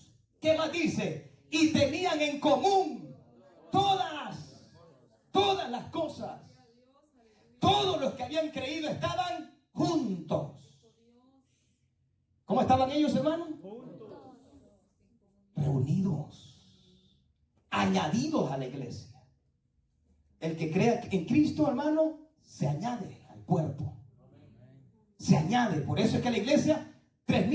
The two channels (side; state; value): both; identical; correlation 1.00